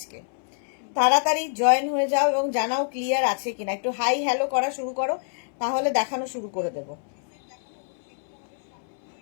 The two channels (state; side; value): silent; right; 61 dB below the other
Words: তাড়াতাড়ি জয়েন হয়ে যাও এবং জানাও ক্লিয়ার আছে কিনা। একটু হাই হ্যালো করা শুরু করো, তাহলে দেখানো শুরু করে দেবো।